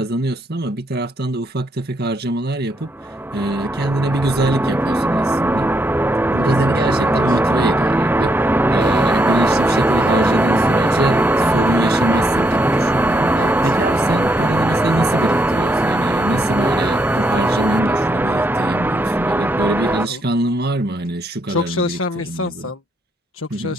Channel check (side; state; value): both; normal; correlation 0.76